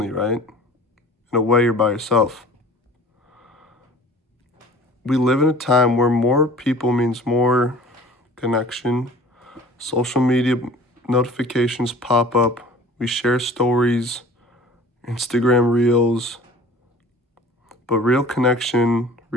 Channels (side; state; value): both; normal; correlation 0.46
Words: right? In a way, you're by yourself. We live in a time where more people means more connection. Social media notifications pop up. We share stories, Instagram reels, but real connection,